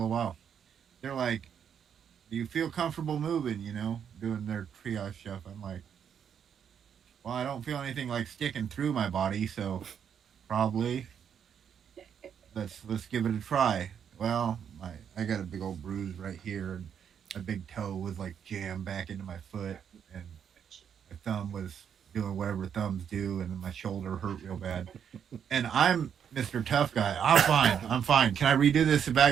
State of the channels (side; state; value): left; quieter; 8.1 dB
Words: while." They're like, "Do you feel comfortable moving? Doing their triage stuff." I'm like, "Well, I don't feel anything like sticking through my body, so probably let's give it a try." Well, I got a big old bruise right here, and my big toe was like jammed back into my foot, and my thumb was doing whatever thumbs do, and then my shoulder hurt real bad. And I'm Mr. Tough Guy. I'm fine. I'm fine. Can I redo this